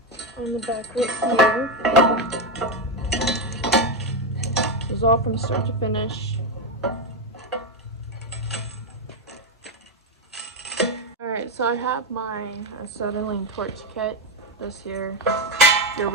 on the back right here. This is all from start to finish. Alright, so I have my acetylene torch kit. This here. Your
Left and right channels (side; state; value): both; normal; correlation 0.08